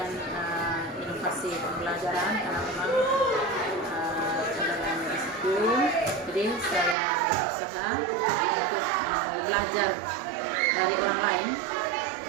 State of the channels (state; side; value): drops out; left; at 7.0 s